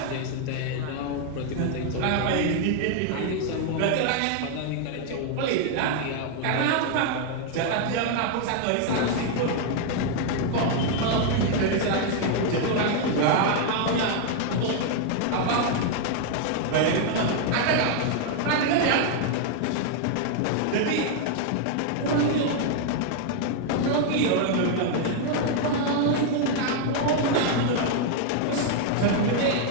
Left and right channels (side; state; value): both; different; correlation 0.00